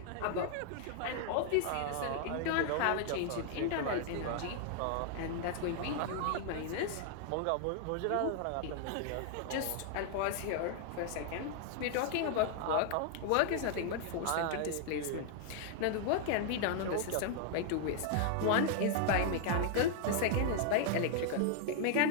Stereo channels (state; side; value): different; both; correlation 0.00